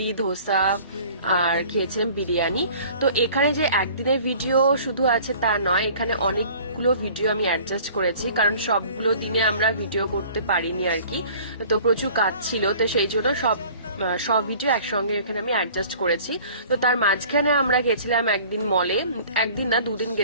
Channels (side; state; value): both; inverted; correlation -0.48